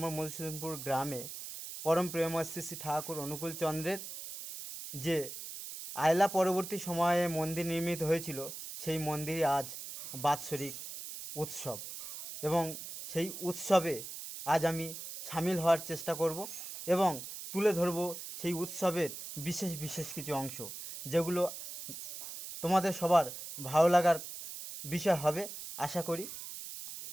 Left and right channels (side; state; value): right; noise; hiss, 9 dB below the sound